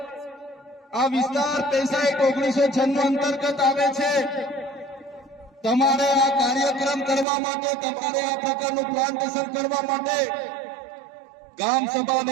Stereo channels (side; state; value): left; drops out; at 7.2 s